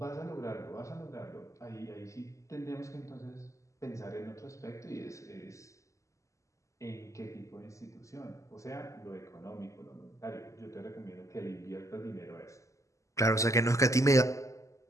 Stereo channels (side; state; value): right; late; 0.15 ms